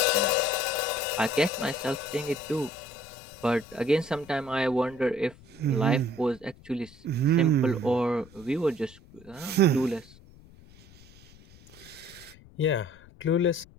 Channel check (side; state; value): left; noise; rumble, 23 dB below the sound